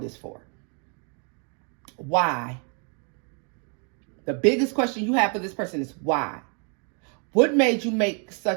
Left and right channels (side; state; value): left; quieter; 38.4 dB